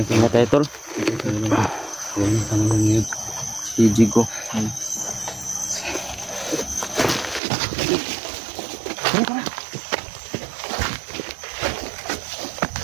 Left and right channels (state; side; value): drops out; left; at 7.4 s